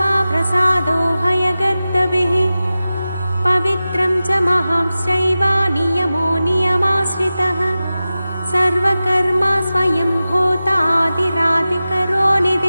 प्रसादो हयगर्दभिः पवित्रं च महांश्चैव नियमो नियमाश्रितः सर्वकर्मा स्वयं भूतादिरादिकरो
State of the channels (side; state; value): both; inverted; correlation -0.95